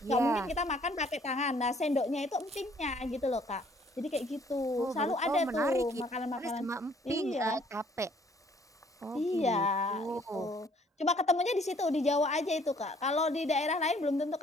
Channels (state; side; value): normal; both; correlation 0.61